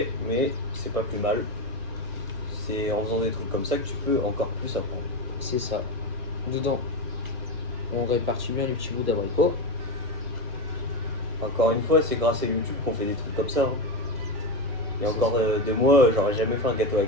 mais c'est pas plus mal. C'est en faisant des trucs comme ça que tu peux encore plus apprendre. C'est ça. Dedans, on répartit bien les petits bouts d'abricot. Encore une fois, c'est grâce à YouTube qu'on fait des trucs comme ça. Hein. Il y a encore 2 mois, j'aurais jamais fait un gâteau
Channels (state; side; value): late; left; 1.2 ms